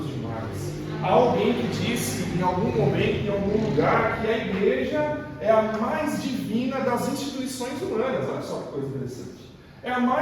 demais. Há alguém que disse em algum momento, em algum lugar, que a igreja é a mais divina das instituições humanas. Olha só que coisa interessante. É a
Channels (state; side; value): identical; both; correlation 1.00